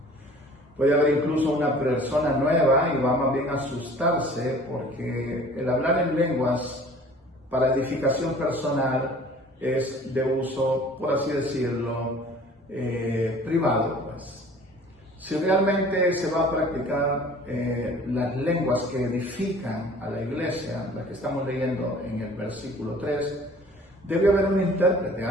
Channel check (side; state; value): both; normal; correlation 0.48